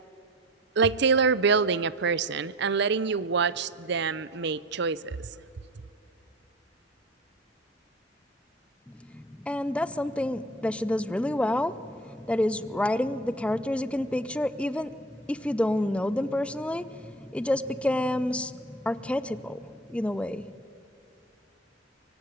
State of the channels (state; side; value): normal; both; correlation 0.40